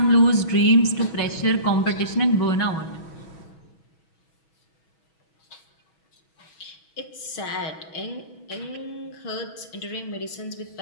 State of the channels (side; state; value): right; late; 6.2 ms